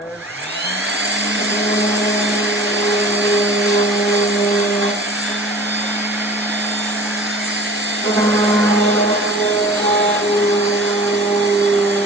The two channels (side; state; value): both; normal; correlation 0.43